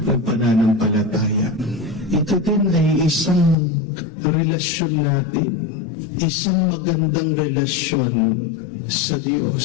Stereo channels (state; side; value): drops out; right; at 3.6 s